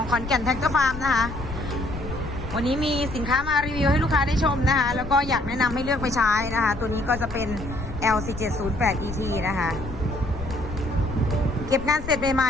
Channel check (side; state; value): left; noise; rumble, 10 dB below the sound